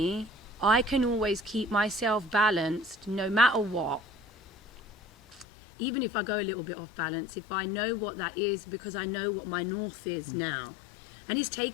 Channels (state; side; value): drops out; right; at 5.5 s